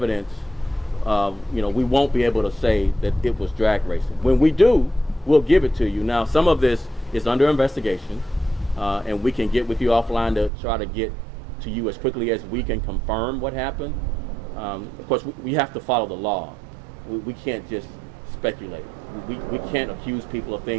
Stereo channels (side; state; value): left; drops out; at 10.5 s